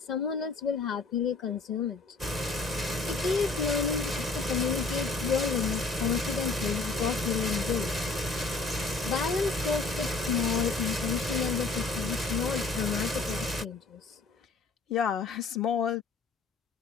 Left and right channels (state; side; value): quieter; right; 3.7 dB